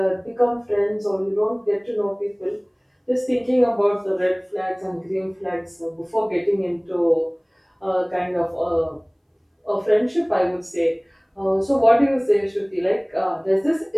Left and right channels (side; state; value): both; identical; correlation 1.00